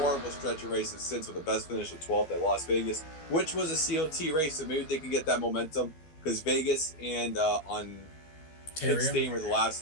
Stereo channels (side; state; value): right; late; 13 ms